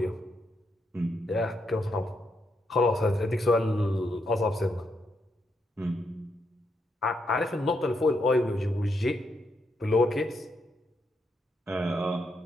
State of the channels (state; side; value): normal; both; correlation 0.80